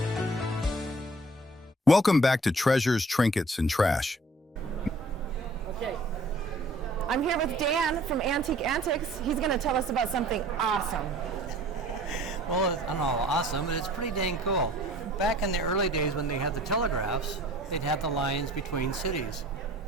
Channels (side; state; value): both; normal; correlation 0.52